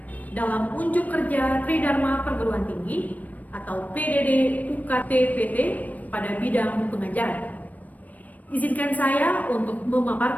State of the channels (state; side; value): late; right; 0.075 ms